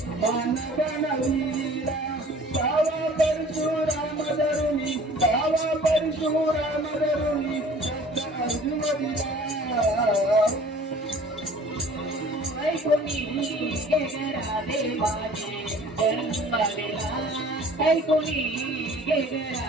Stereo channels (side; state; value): both; normal; correlation 0.49